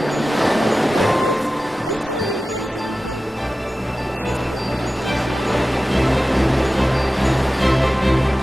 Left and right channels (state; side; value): normal; both; correlation 0.95